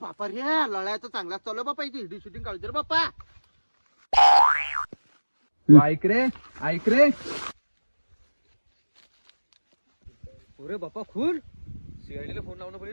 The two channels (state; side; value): inverted; both; correlation -1.00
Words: बापा रे लढाया तर चांगलाच चालू बापा इथे शूटिंग काढू दे बाप्पा. ऐक रे ऐक रे. अरे बाप्पा खून सीआयडीला फोन लावणं